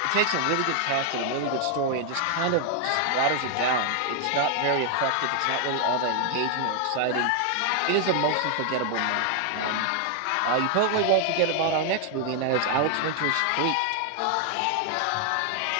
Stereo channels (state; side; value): different; both; correlation 0.00